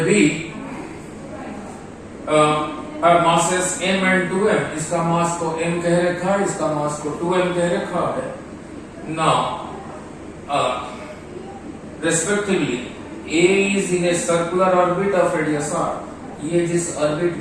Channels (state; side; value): identical; both; correlation 1.00